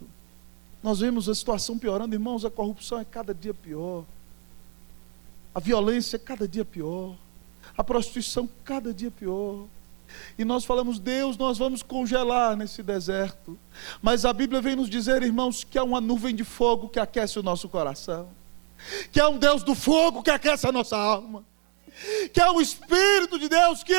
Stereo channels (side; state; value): left; quieter; 39.6 dB